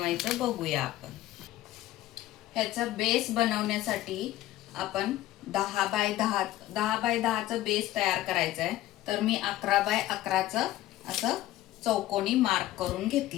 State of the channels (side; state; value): right; quieter; 15.1 dB